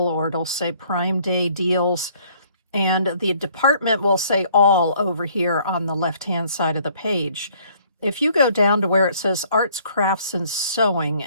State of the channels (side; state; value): both; inverted; correlation -0.61